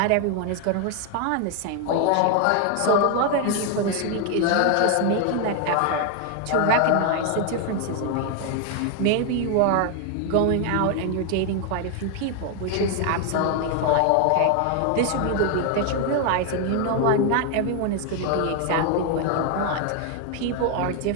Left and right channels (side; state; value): both; different; correlation 0.01